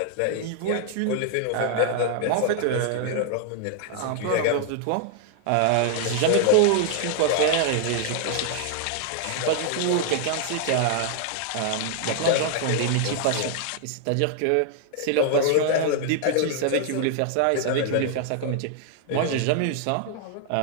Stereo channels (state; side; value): different; both; correlation 0.00